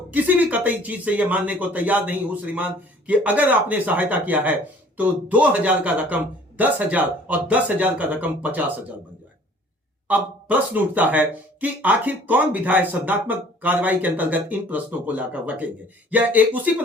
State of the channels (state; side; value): normal; both; correlation 0.53